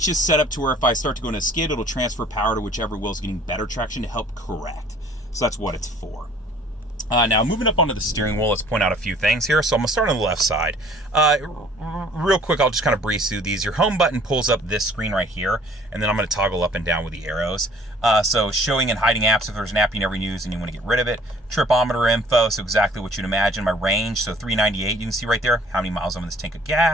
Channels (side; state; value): both; normal; correlation 0.54